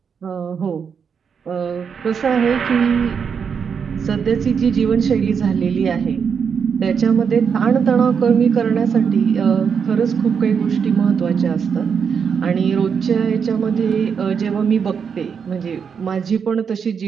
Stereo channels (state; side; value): quieter; left; 6.6 dB